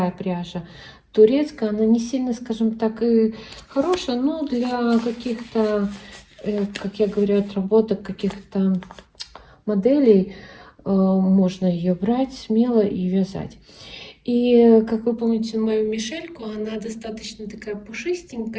пряжа, турецкая. Она не сильно, скажем так, и хорошая, но для каких-то, как я говорю, отработок каких-то моделей можно ее брать смело и вязать. И, как вы помните, мою Мишельку, она достаточно такая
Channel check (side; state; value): both; identical; correlation 1.00